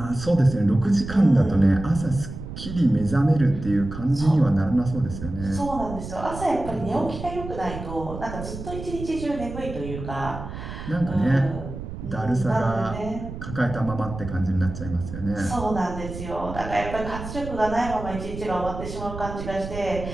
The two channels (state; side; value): noise; right; rumble, 9 dB below the sound